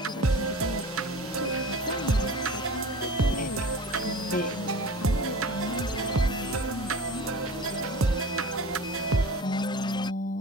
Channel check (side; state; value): both; normal; correlation 0.37